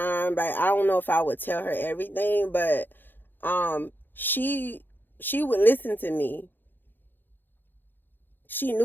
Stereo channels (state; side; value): late; right; 0.094 ms